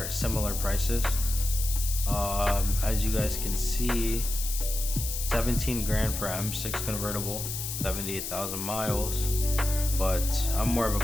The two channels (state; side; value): noise; left; hiss, 5 dB below the sound